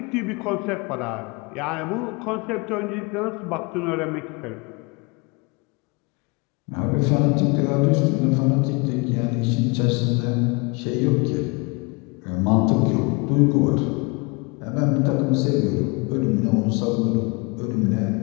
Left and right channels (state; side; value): quieter; right; 29.5 dB